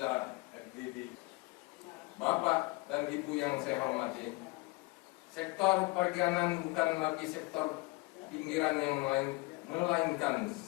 FGD. Bapak dan Ibu yang saya hormati, sektor perikanan bukan lagi sektor pinggiran yang melainkan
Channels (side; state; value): right; quieter; 24.8 dB